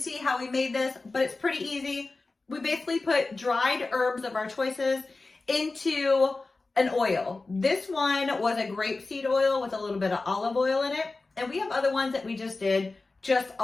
how we made this, but it's pretty easy. We basically put dried herbs of our choices into an oil. This one was a grapeseed oil with a little bit of olive oil in it. And we have other ones that we just did just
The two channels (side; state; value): right; quieter; 3.5 dB